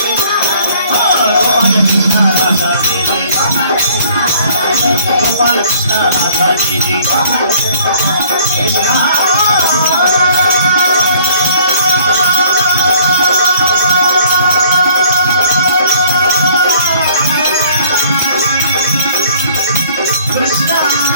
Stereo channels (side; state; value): both; inverted; correlation -0.56